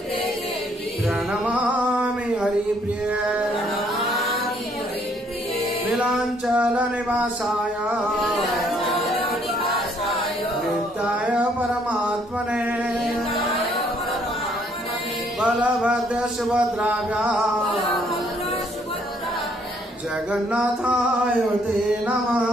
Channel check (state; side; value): normal; both; correlation 0.66